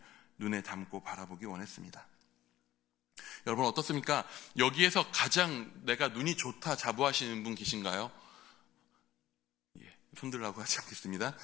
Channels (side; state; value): right; quieter; 14.3 dB